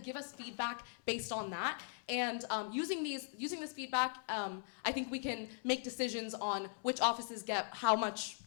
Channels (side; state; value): right; silent; 51 dB below the other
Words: give us feedback based on that. And using this feedback, I think we can make decisions on which offices get how much